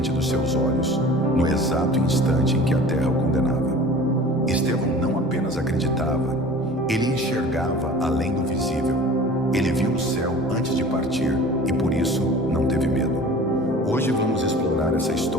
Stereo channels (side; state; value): both; normal; correlation 0.42